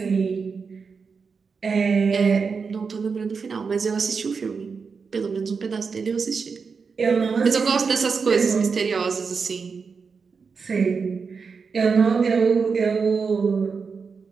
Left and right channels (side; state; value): left; quieter; 5.3 dB